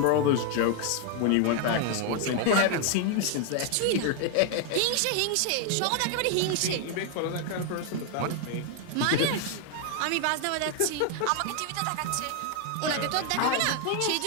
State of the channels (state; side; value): different; both; correlation 0.00